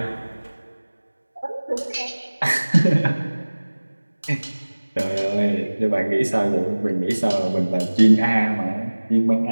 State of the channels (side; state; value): both; inverted; correlation -1.00